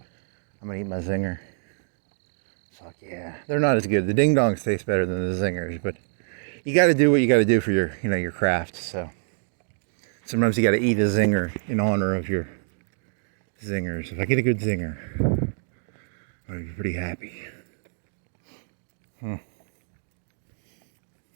I'm gonna eat my zinger. Fuck yeah, they're not as good. The ding dongs taste better than the zingers, but you got to do what you got to do for your, your craft. So sometimes you got to eat a zinger in honor of your zingers. If I get a good zinger, I'm gonna be pretty happy.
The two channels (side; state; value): left; silent; digital silence